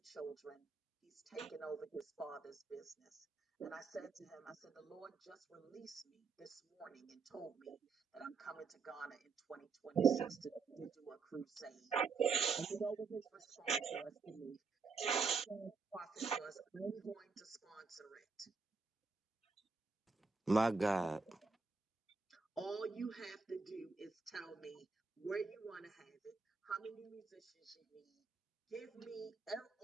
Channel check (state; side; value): quieter; left; 4.8 dB